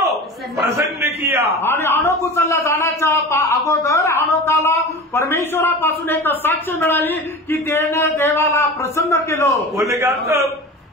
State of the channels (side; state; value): both; normal; correlation 0.33